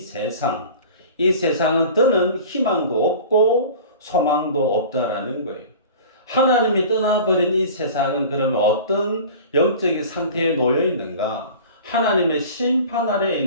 더는 희망도 없고 소망도 없다라는 거예요. 하나님이 떠나버린 이 세상은 그러면 어떤 영적인 상태에 놓여 있는가? 하나님의 심판 아래에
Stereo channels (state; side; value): inverted; both; correlation -0.39